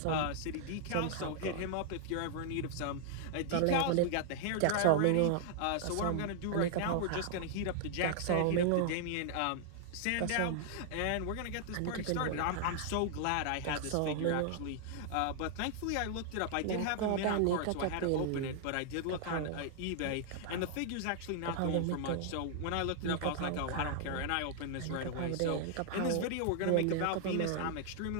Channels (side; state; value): both; different; correlation -0.01